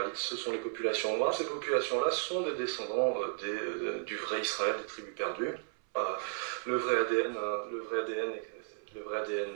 ce sont les populations noires. Ces populations-là sont des descendants du vrai Israël, des tribus perdues. Le vrai ADN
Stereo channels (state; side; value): silent; left; 55 dB below the other